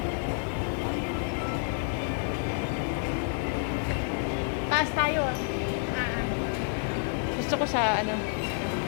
Taas tayo. Gusto ko sa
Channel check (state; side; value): silent; right; 58 dB below the other